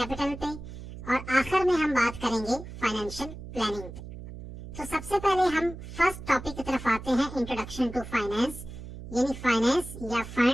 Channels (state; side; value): noise; right; hum, 12 dB below the sound